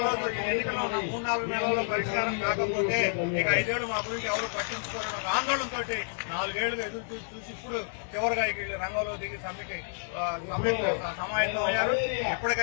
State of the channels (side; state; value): right; silent; digital silence